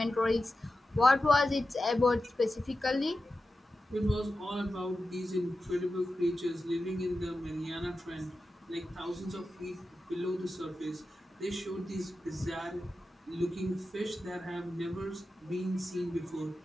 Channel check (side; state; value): both; normal; correlation 0.92